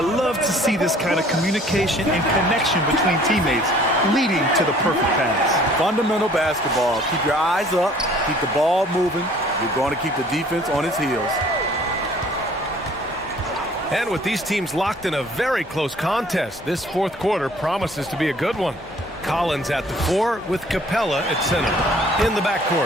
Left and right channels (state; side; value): normal; both; correlation 0.54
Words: to see this kind of communication and connection between teammates leading to the perfect pass. Fundamental basketball. Keep your eyes up. Keep the ball moving. You're going to keep the defense on its heels. And with these teams locked in a very close contest, this fourth quarter promises to be a good one. Collins at the 4 with Capella at center. In the